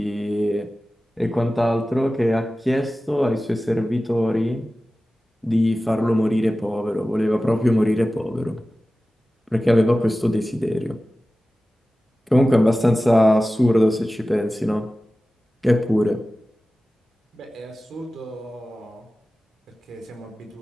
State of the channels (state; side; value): normal; both; correlation 0.96